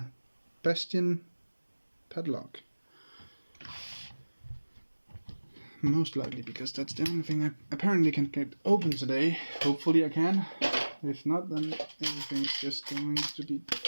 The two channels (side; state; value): both; inverted; correlation -1.00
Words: bastion padlock. Most likely because that's the only thing I apparently can get open today. Hopefully I can. If not, then everything's just going to be